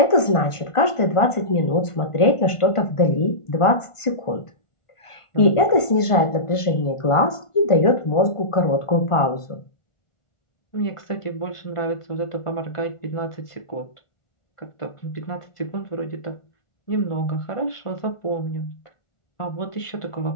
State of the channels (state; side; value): late; right; 1.5 ms